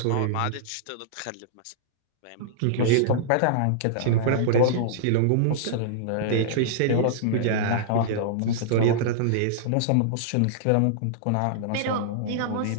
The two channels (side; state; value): both; different; correlation -0.02